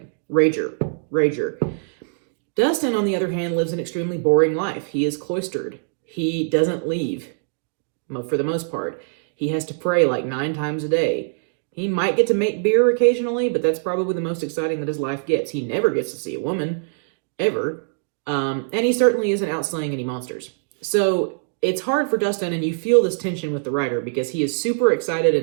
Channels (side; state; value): left; silent; digital silence